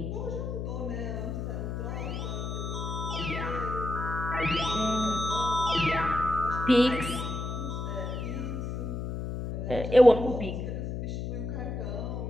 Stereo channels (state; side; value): noise; left; hum, 4 dB below the sound